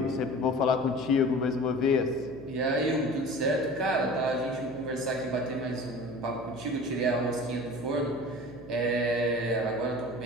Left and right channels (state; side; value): noise; right; hum, 15 dB below the sound